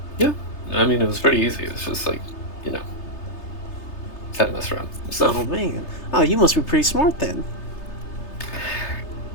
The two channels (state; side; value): late; right; 3.3 ms